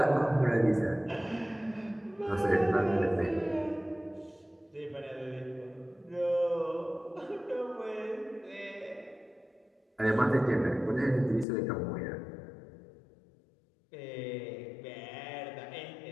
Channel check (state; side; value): drops out; right; at 11.5 s